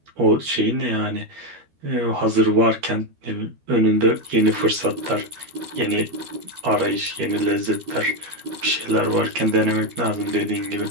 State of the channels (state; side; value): late; left; 13 ms